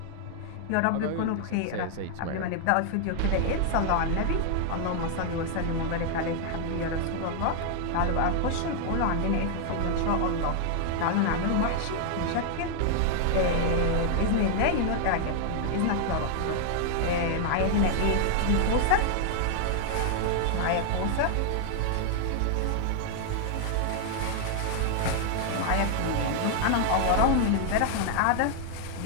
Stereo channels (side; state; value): both; different; correlation 0.00